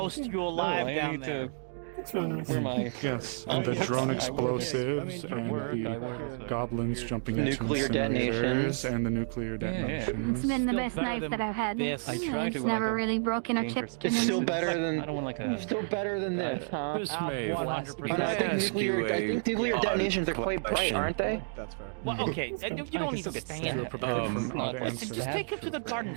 you alive down there. That's really nice. Yes, and the drone explosives and the goblins jumping into Nuclear detonations. incinerators and the nuclear detonations. It's been the best knife that I've had. It's never really broken or chipped or It's still anything. still better than this, huh? Miss Maeve, 100%. can I I think ask you nuclear a detonations are quite bright, question? aren't they? Well, okay, you don't need to stand there. Listen, just take them to the garden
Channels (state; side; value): silent; left; digital silence